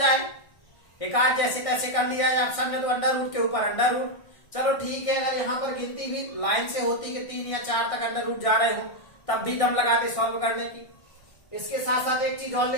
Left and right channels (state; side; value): late; right; 1.6 ms